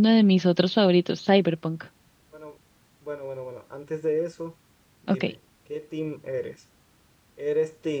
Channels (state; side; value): identical; both; correlation 1.00